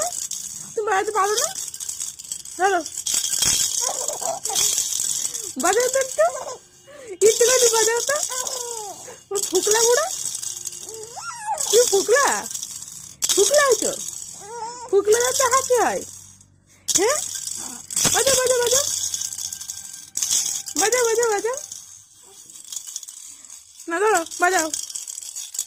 তুমি বাজাতে পারো না? ধরো, বাজাও তো একটু, একটু বাজাও তো। ফুকলা বুড়া, কি ফুকলা, ফুকলা হয়েছো? ফুকলা যাতে হাসি হয়। হ্যাঁ, বাজাও বাজাও বাজাও, বাজাও বাজাও বাজাও। না ধরো, বাজাও,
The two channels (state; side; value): identical; both; correlation 1.00